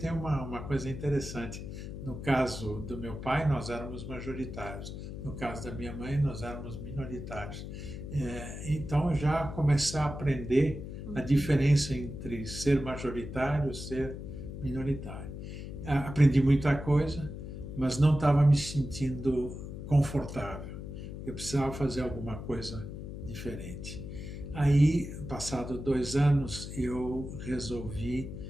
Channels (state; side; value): noise; left; hum, 9 dB below the sound